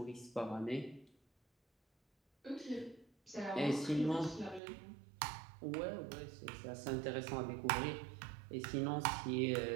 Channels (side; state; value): left; drops out; at 4.6 s